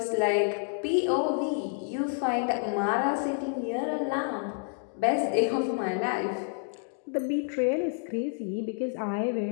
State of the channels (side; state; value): right; silent; 59 dB below the other